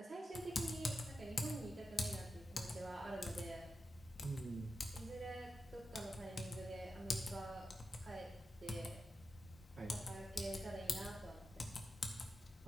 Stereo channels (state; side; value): normal; both; correlation 0.90